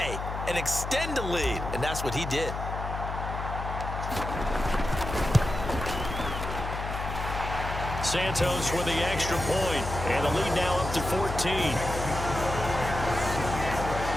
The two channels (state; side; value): noise; left; hum, 5 dB below the sound